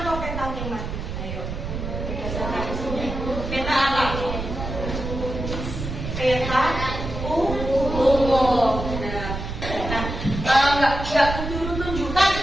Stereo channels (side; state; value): right; noise; rumble, 6 dB below the sound